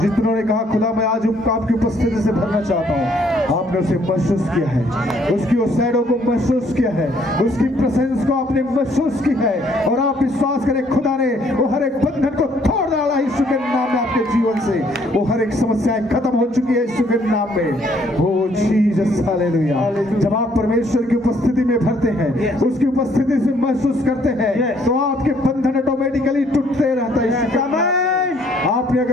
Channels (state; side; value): normal; both; correlation 0.65